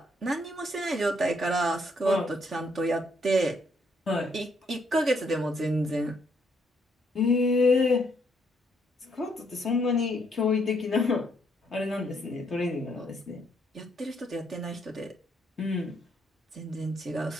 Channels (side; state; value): both; normal; correlation 0.72